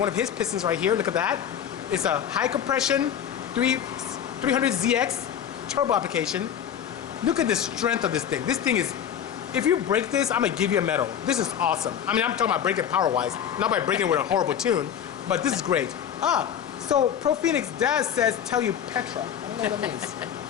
of his pistons right here. Look at that. It's a high compression 300ZX turbo application. Look at the strength of this thing. This thing is, if you break this, I'm gonna give you a medal. This is awesome. I mean, I'm talking about breaking power-wise, not by breaking with a horrible tune, but this is great. So Pro Phoenix Daz says, tell you Petra. I don't know what that means.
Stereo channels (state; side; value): quieter; right; 9.0 dB